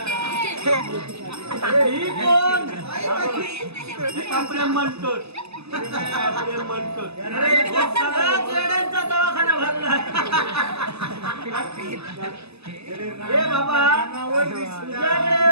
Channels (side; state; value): left; late; 0.79 ms